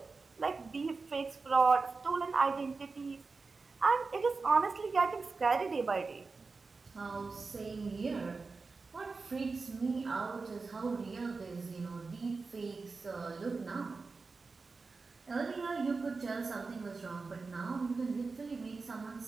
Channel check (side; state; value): left; quieter; 4.2 dB